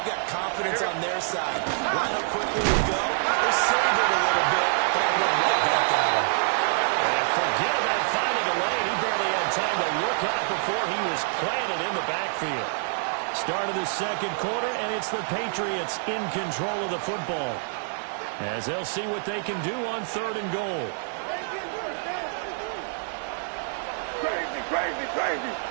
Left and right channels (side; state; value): left; silent; 61 dB below the other